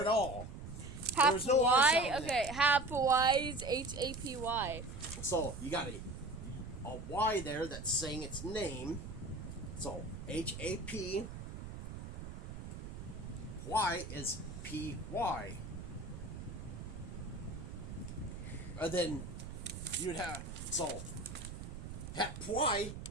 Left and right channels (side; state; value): right; noise; rumble, 9 dB below the sound